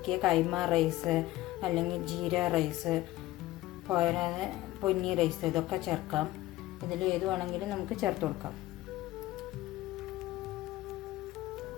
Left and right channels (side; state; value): right; quieter; 16.5 dB